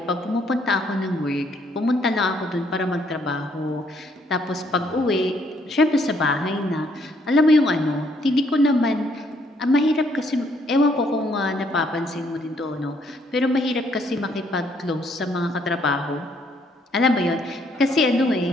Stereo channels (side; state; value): both; normal; correlation 0.69